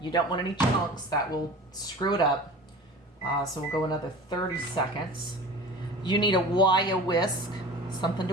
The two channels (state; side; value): normal; both; correlation 0.38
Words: don't want any chunks. That will screw it up. So we'll go another 30 seconds. You need a wire whisk, something